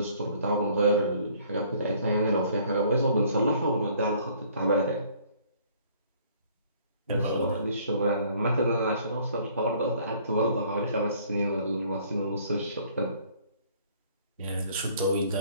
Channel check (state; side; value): inverted; both; correlation -0.58